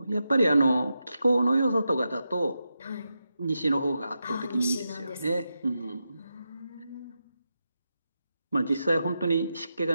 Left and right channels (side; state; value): both; inverted; correlation -0.88